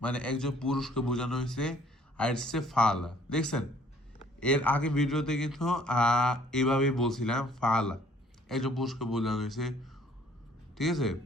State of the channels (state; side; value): normal; both; correlation 0.59